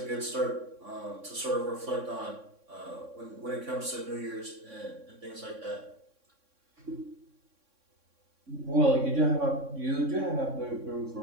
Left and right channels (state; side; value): late; left; 3.6 ms